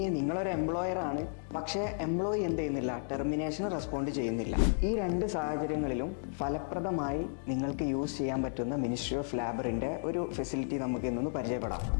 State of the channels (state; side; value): silent; right; digital silence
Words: നിങ്ങളൊരു എംപ്ലോയർ ആണ്, പക്ഷേ എംപ്ലോയി എന്ത് ചെയ്യുന്നില്ല, ടെർമിനേഷൻ റെസ്പോണ്ട് ചെയ്യുന്നില്ല. ഈ രണ്ട് സാഹചര്യങ്ങളിലും ഫലപ്രദമായി നിങ്ങൾക്ക് യൂസ് ചെയ്യാൻ പറ്റുന്ന മിനിസ്ട്രി ഓഫ് ലേബറിൻ്റെ ഒരു ഫെസിലിറ്റി നമുക്ക് ഇന്നൊന്ന് പരിചയപ്പെടാം.